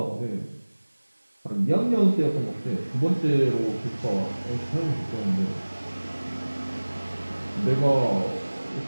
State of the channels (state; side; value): inverted; both; correlation -1.00